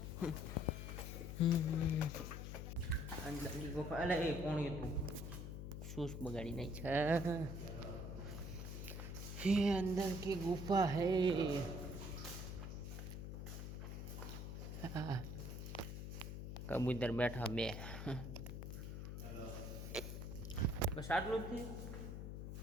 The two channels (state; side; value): noise; left; hum, 6 dB below the sound